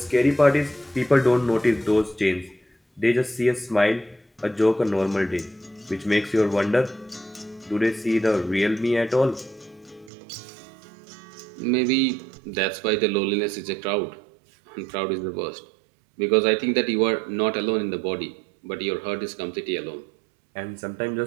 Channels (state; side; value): drops out; left; at 10.1 s